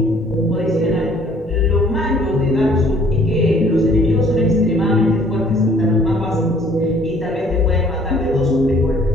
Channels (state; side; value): normal; both; correlation 0.58